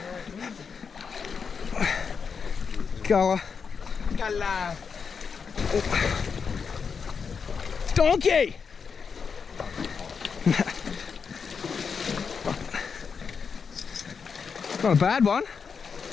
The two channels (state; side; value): quieter; right; 5.9 dB